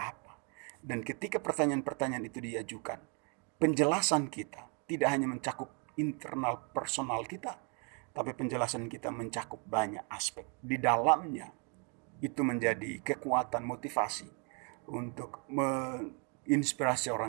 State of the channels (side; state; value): left; quieter; 36.3 dB